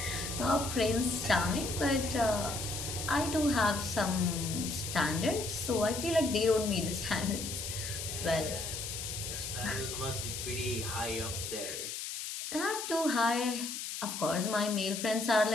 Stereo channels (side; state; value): left; noise; hiss, 5 dB below the sound